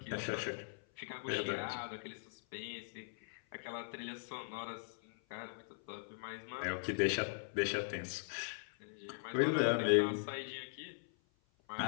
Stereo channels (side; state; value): right; silent; 51 dB below the other